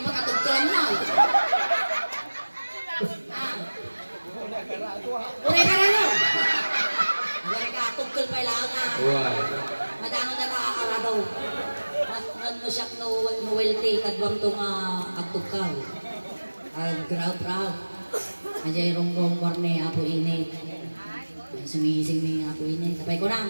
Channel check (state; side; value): inverted; both; correlation -1.00